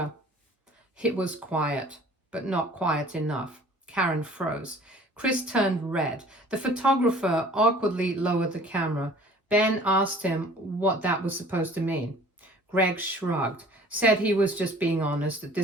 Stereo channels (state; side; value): normal; both; correlation 0.50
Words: It was quiet, but not quiet enough. Karen froze. Chris turned red. The photographer awkwardly lowered the camera. Ben asked him what that was supposed to mean. Greg shrugged, said he was just being honest, that